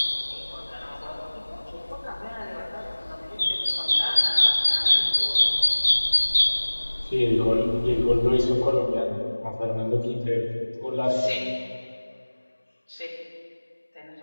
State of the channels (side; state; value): both; inverted; correlation -1.00